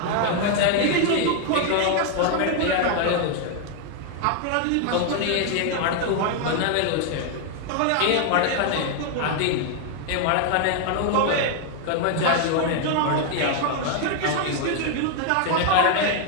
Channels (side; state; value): both; different; correlation 0.00